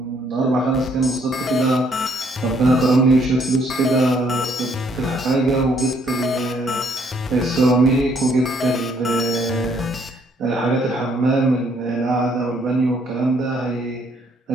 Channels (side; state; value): both; normal; correlation 0.67